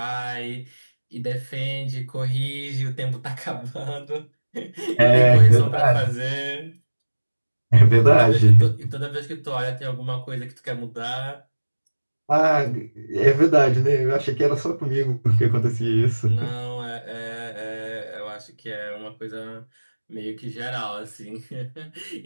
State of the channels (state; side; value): inverted; both; correlation -1.00